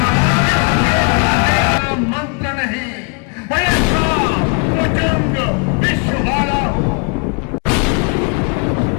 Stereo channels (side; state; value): right; quieter; 34.9 dB